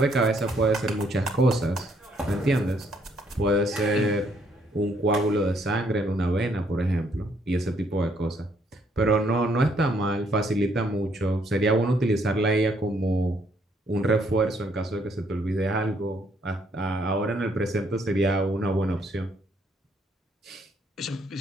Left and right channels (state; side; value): normal; both; correlation 0.69